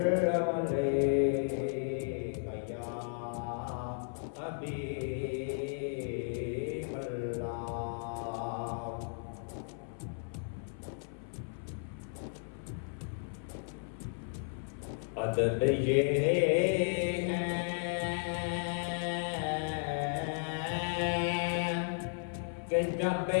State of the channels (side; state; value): right; silent; 55 dB below the other